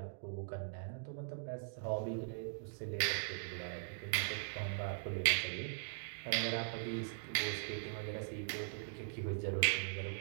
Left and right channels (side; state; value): left; silent; digital silence